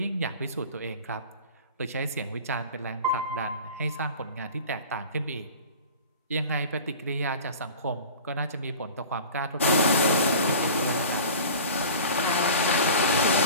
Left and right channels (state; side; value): inverted; both; correlation -0.38